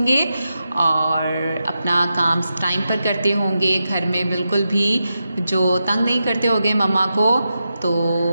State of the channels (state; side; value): inverted; both; correlation -0.88